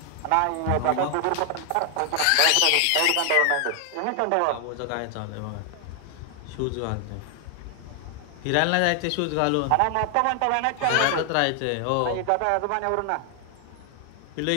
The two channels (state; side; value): different; both; correlation 0.00